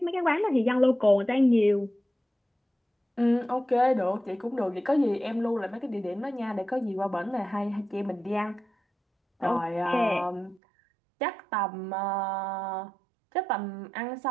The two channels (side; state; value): left; drops out; at 10.6 s